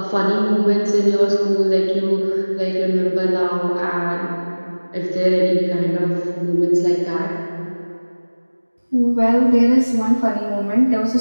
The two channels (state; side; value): inverted; both; correlation -1.00